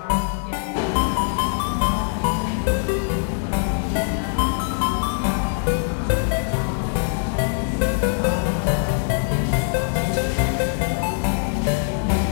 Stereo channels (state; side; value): silent; right; 64 dB below the other